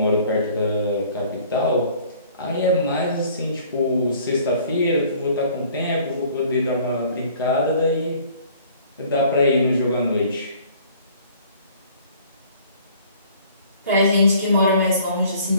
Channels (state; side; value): inverted; both; correlation -0.54